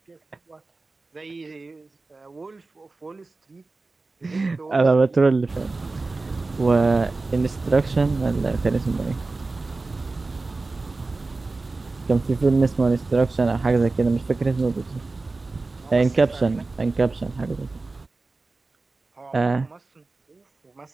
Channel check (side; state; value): left; quieter; 3.5 dB